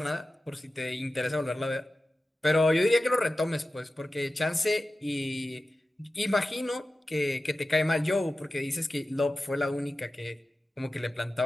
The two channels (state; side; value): normal; both; correlation 0.94